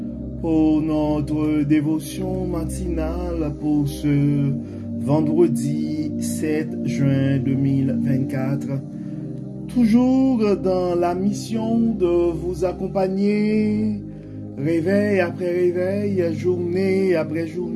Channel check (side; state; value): both; identical; correlation 1.00